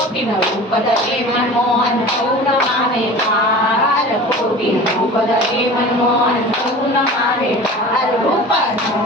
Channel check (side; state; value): both; normal; correlation 0.38